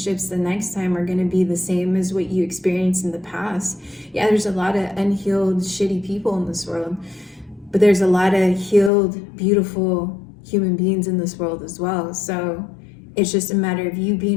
the next time are going to be the same as what you experienced in the past. Yeah, there's a lot of unhealed, shitty people in this world, but there's a lot of healed, beautiful human beings in this world as well. So it's just a matter of you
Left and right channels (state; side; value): drops out; right; at 8.9 s